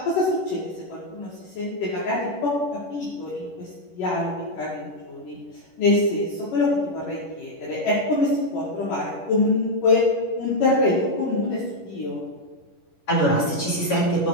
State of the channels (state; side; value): late; right; 11 ms